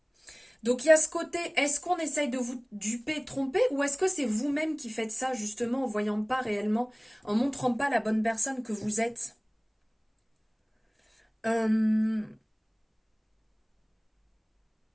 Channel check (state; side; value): identical; both; correlation 1.00